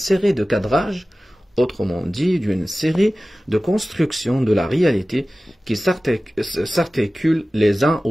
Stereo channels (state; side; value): normal; both; correlation 0.96